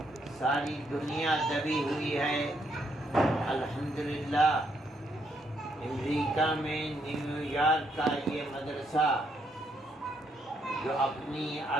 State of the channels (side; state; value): both; normal; correlation 0.75